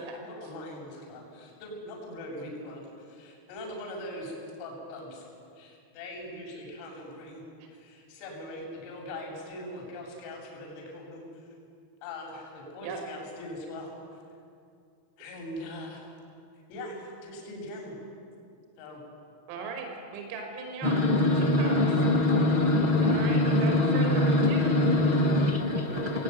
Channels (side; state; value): left; late; 6.2 ms